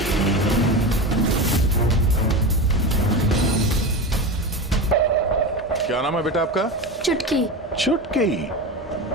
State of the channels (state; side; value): normal; both; correlation 0.23